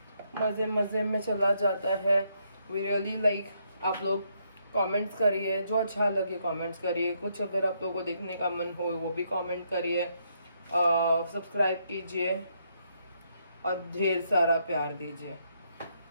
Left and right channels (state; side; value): inverted; both; correlation -0.75